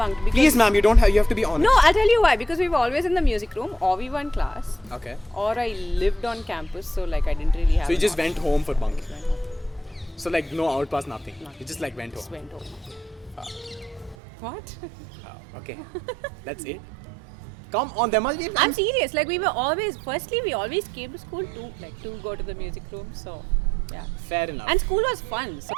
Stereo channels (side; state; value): left; drops out; at 14.2 s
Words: Because Please, ma'am, you have to be honest. No, I'll tell you why. Because we were always in the music room, or we were in class, Okay. or I lived on campus, so like I didn't really have. So you an just option. went home for bunking. Went home. So like no outpass, nothing. You just like went Just home. went home. What? Okay. That's it. Come on, there must be. I'm serious. Like we always came to school to go to the music room. So yeah. Fair enough. And school was fun. So